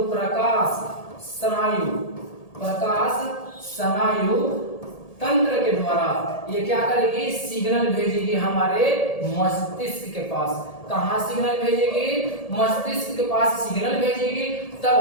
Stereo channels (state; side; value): late; right; 1.8 ms